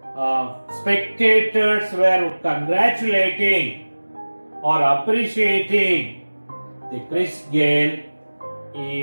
spectators were congratulating or appreciating the Chris Gayle. He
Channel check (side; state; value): both; inverted; correlation -1.00